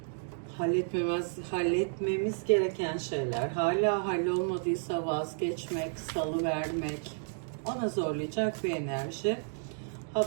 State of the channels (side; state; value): left; silent; digital silence